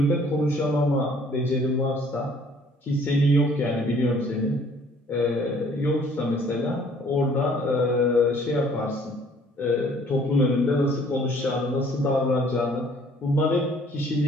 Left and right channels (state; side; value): normal; both; correlation 0.58